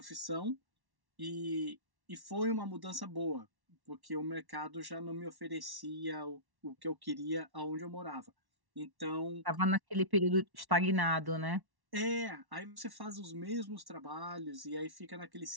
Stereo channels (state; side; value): late; left; 1.1 ms